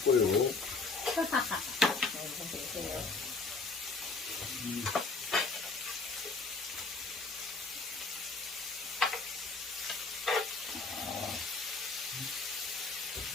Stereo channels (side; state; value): right; quieter; 4.0 dB